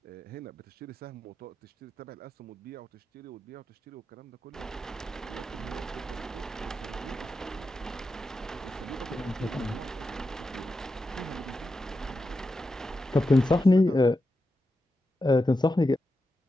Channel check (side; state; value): both; normal; correlation 0.89